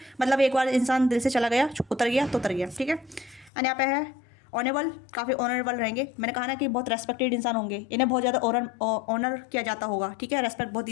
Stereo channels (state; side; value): drops out; right; at 3.5 s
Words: मतलब एक बार इंसान दिल से चला गया, उतर गया तो उतर गया, ठीक है। एंड यहाँ पे है ऑनेबल, काफ़ी ऑनरेबल रहेंगे। मैंने कहा ना कि बहुत रेस्पेक्टेड इंसान होंगे, इन्हें बहुत ज़्यादा ऑनर किया जाता होगा, ठीक है, रेस्पेक्ट बहुत